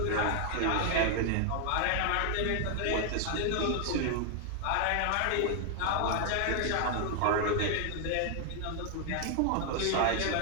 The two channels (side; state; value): both; different; correlation 0.00